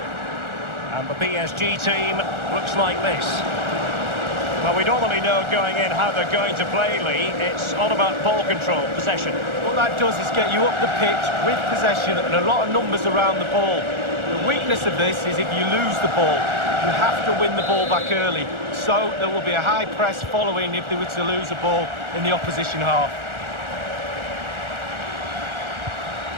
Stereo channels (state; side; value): late; left; 1.4 ms